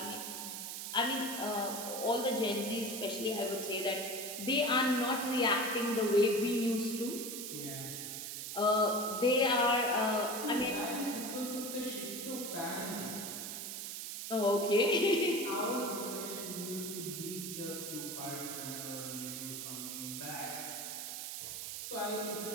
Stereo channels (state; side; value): noise; right; hiss, 6 dB below the sound